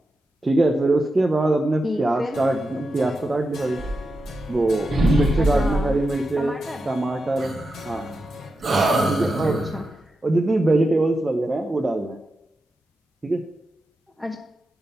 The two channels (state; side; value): normal; both; correlation 0.89